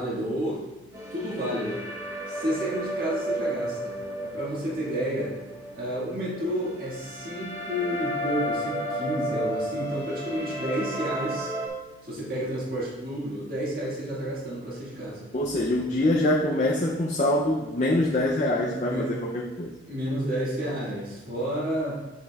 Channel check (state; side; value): noise; right; hum, 29 dB below the sound